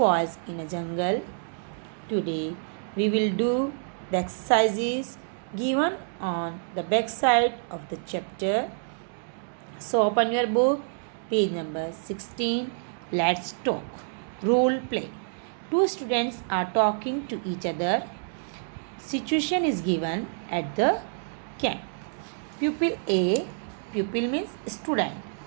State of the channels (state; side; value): silent; left; digital silence